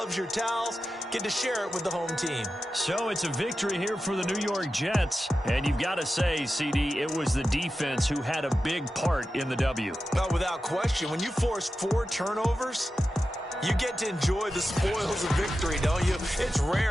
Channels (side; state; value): both; normal; correlation 0.92